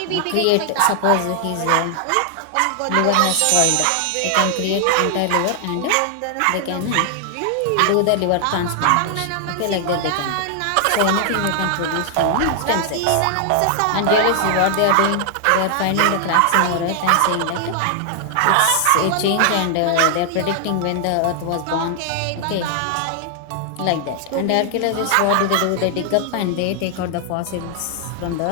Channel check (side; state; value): both; different; correlation 0.00